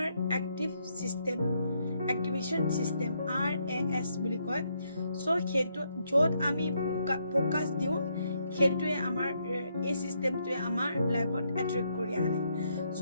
active system activation system RAS বুলি কয় সো সেইটো য'ত আমি ফোকাস দিওঁ সেইটোৱে আমাৰ এই সিস্টেমটোৱে আমাৰ লাইফত এট্ৰেক্ট কৰি আনে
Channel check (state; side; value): inverted; both; correlation -0.76